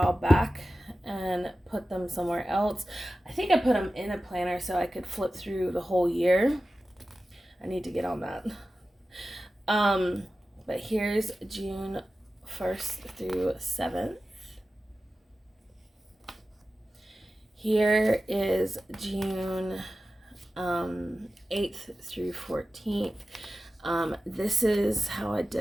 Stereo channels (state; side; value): normal; both; correlation 0.94